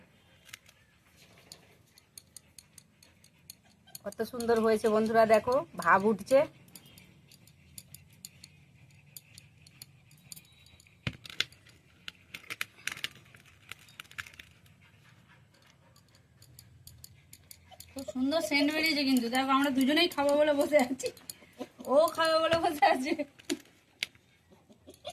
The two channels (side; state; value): both; identical; correlation 1.00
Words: কত সুন্দর হয়েছে বন্ধুরা, দেখো ভাব উঠছে। খুব সুন্দর সেন্ট বেরিয়েছে কিন্তু। দেখো আমরা দুজনেই খাবো বলে বসে আছি, ও খাবে বলে বসে আছে।